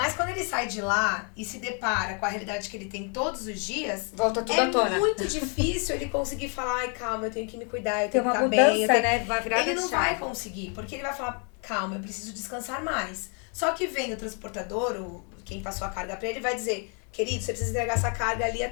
quando ele sai de lá e se depara com a realidade que ele tem todos os dias, volta tudo à tona. É muito difícil ele conseguir falar, ai, calma, eu tenho que me cuidar, eu Tem tenho que uma estar mudança, bem. Eu tenho... né? Vai virar Ele não vai conseguir, porque ele vai falar, calma, eu preciso descansar mais. Só que vem o transportador, quem passou a carga pra ele, vai dizer, querido, você precisa entregar essa carga ali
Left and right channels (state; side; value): quieter; right; 38.2 dB